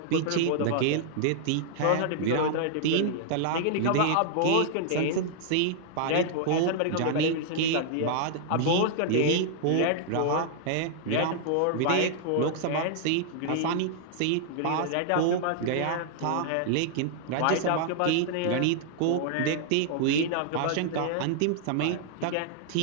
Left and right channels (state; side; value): different; both; correlation -0.01